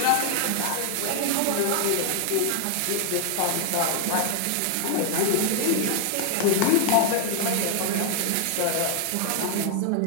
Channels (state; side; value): different; both; correlation 0.00